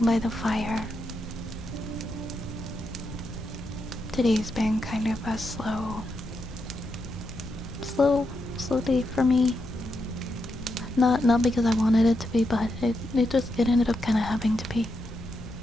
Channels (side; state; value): left; noise; rumble, 15 dB below the sound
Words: fire. Today's been kind of a slow day for me. Not because I wanted it to be, but it ended up kind of having to be.